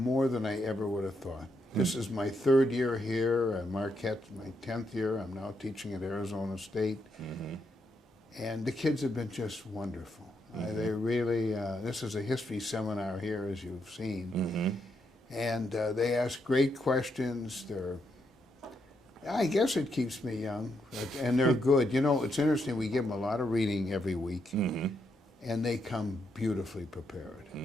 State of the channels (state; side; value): normal; both; correlation 0.80